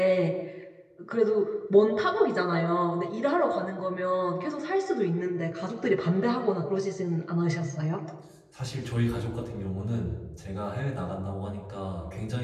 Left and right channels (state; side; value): identical; both; correlation 1.00